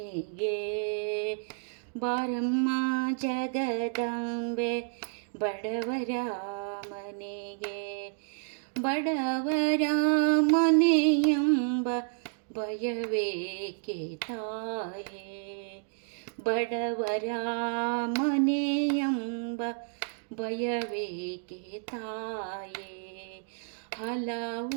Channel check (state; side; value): silent; left; digital silence